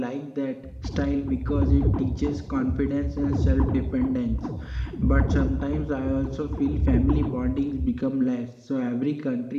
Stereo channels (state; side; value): identical; both; correlation 1.00